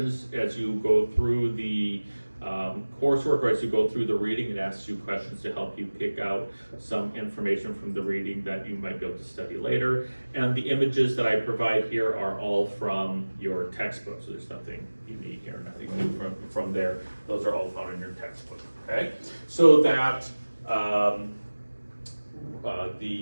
as you go through the coursework, or as you go through the reading. It asks you questions to help you pick out some information from the reading that you might be able to study later. And the images that I provide here are all from your textbook, so there's nothing unique or nothing new from there. Those are all found in your textbook, okay? So that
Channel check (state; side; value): inverted; both; correlation -1.00